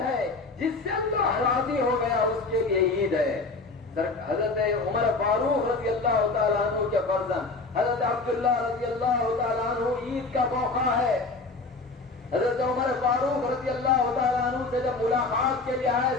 جس سے اللہ راضی ہو گیا اس کے لیے عید ہے. حضرت عمر فاروق رضی اللہ تعالیٰ عنہ کے فرزند حضرت عبداللہ رضی اللہ تعالیٰ عنہ, عید کا موقع ہے. حضرت عمر فاروق رضی اللہ تعالیٰ عنہ سے جب ملاقات کے لیے آئے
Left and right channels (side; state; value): right; quieter; 3.7 dB